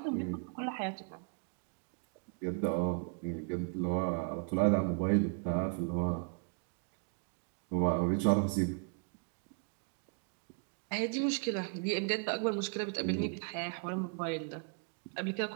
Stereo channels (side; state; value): left; quieter; 38.9 dB